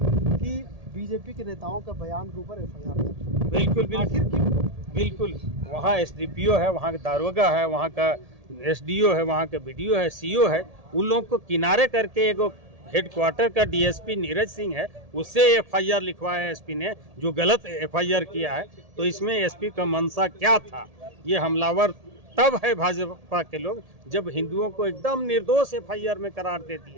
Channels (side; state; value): left; late; 1.7 ms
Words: कि बीजेपी के नेताओं का बयान के ऊपर एफआईआर दर्ज। बिल्कुल आखिर क्यों? बिल्कुल वहाँ एसडीपीओ है, वहाँ का दारोगा है, वहाँ का एसडीओ है, वहाँ का बीडीओ है, सीओ है, उन लोगों को किनारे करके एक हेडक्वार्टर का डीएसपी नीरज सिंह है, उससे एफआईआर लिखवाया एसपी ने, जो गलत एफआईआर किया है। तो इसमें एसपी का मंशा क्या था? ये हमलावर तब है भाजपा के लोग जब हिंदुओं को एकदम निर्दोष एफआईआर में करार दे